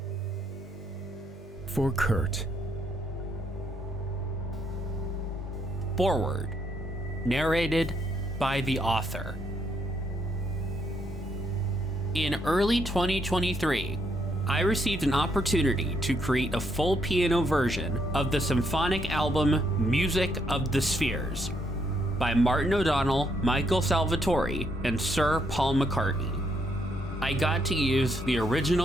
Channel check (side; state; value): both; normal; correlation 0.75